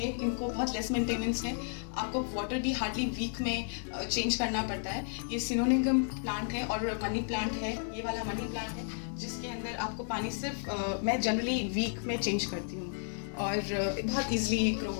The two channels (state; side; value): silent; right; 56 dB below the other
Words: इनको बहुत लेस मेंटेनेंस है, आपको वाटर भी हार्डली वीक में चेंज करना पड़ता है। ये सिनोनिगम प्लांट है और मनी प्लांट है, ये वाला मनी प्लांट है जिसके अंदर आपको पानी सिर्फ मैं जनरली वीक में चेंज करती हूँ और बहुत ईजिली ग्रो